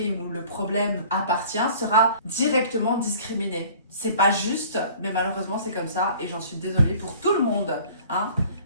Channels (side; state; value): both; inverted; correlation -0.49